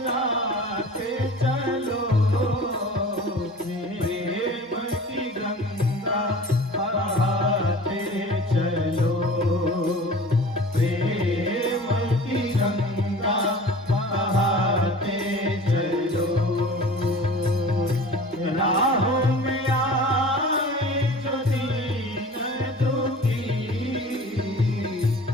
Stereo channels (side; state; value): both; normal; correlation 0.41